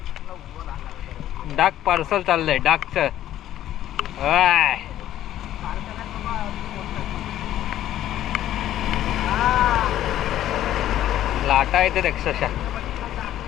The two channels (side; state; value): right; quieter; 12.6 dB